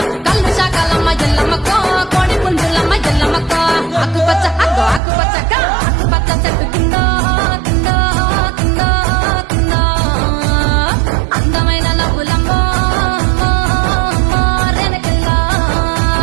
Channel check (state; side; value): drops out; left; at 5.0 s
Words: కల్లు శాకలమ్మ ఎల్లమ్మకో కోడి పుంజులమ్మ ఎల్లమ్మకో ఆకుపచ్చ ఆకుపచ్చ చెట్టు కింద కింద కింద కింద అందమైన నవ్వులమ్మో అమ్మో అమ్మో రెనకెల్లా